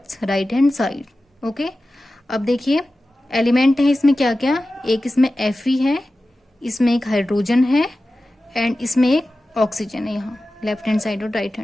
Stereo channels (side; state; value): both; normal; correlation 0.95